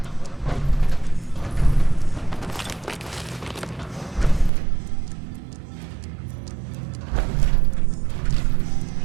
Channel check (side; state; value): left; drops out; at 4.5 s